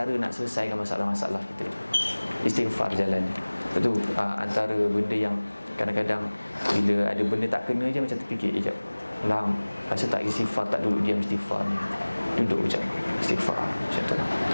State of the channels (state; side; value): inverted; both; correlation -1.00